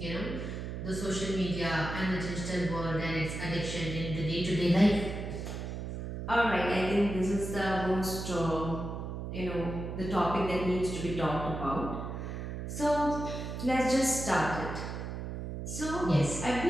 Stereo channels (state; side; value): noise; right; hum, 6 dB below the sound